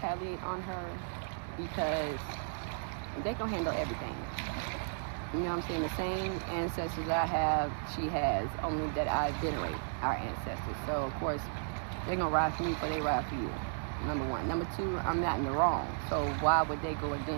on her because they can handle everything. You know what I'm saying? The same ancestors I have, she has, only that I venerate our ancestors. So, of course, they're going to ride for me before they ride for you. Number one. Number two, I'm not in the wrong. So why would they go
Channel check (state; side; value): silent; left; digital silence